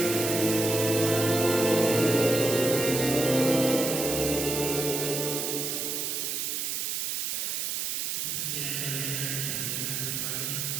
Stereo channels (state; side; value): noise; right; hiss, 1 dB below the sound